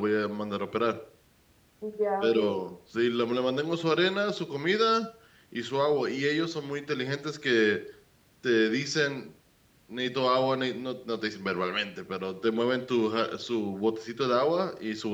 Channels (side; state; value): both; identical; correlation 1.00